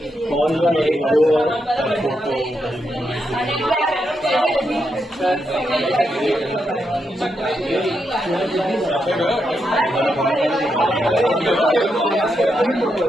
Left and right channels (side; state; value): both; normal; correlation 0.83